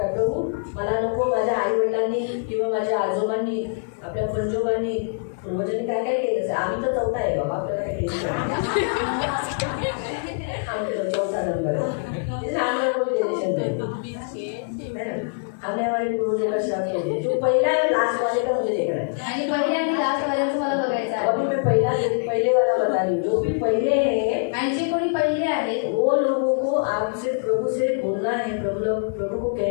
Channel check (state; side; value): silent; right; digital silence